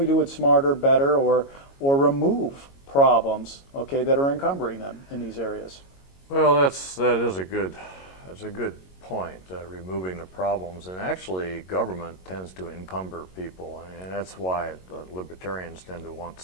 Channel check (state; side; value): late; right; 22 ms